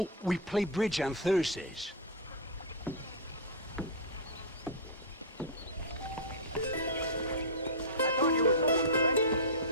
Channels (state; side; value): normal; both; correlation -0.08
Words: we play bridge on Thursdays.